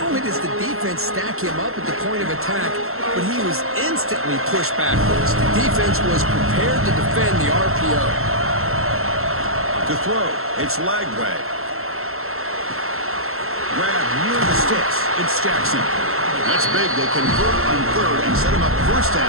only does the defense stack him up at the point of attack, but he was instantly pushed backwards. The defense was prepared to defend the RPO. To throw, it's Lagway. Grab near the sticks. It's Jackson. That's big. They convert on 3rd and set him up first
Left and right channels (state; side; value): late; left; 0.62 ms